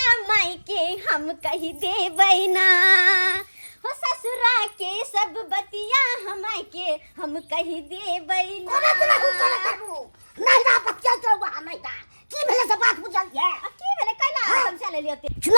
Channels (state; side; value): inverted; both; correlation -1.00